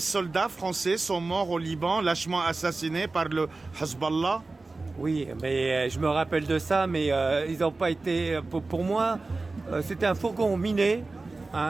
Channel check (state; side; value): quieter; left; 3.5 dB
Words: français sont morts au Liban, lâchement assassinés par le Hezbollah? Oui, mais je me rappelle de ça, mais ils n'ont pas été... Pour moi, c'était un fourgon miné